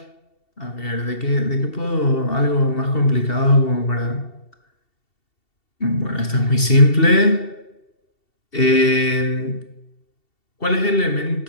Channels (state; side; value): late; right; 2.7 ms